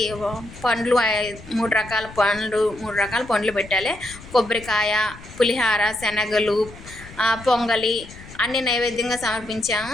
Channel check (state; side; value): noise; left; rumble, 18 dB below the sound